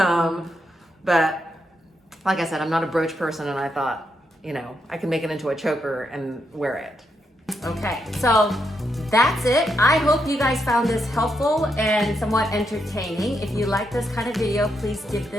But like I said, I'm not a brooch person, and I thought, I can make it into a choker and wear it. Okay, so that's it. I hope you guys found this helpful and somewhat entertaining. If you like this kind of video, please give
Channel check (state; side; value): normal; both; correlation 0.81